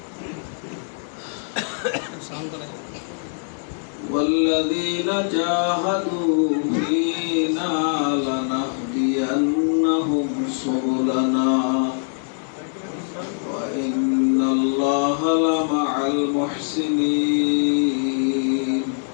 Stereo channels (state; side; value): silent; right; digital silence